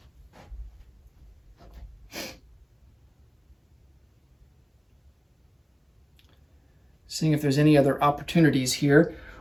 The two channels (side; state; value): both; identical; correlation 1.00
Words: Seeing if there's any other opportunities here.